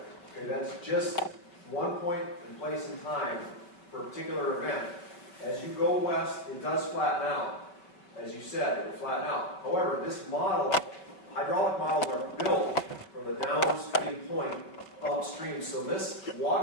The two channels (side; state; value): right; late; 5.2 ms